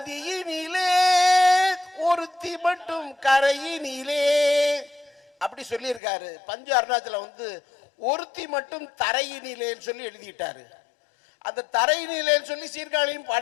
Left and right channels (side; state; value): right; drops out; at 6.0 s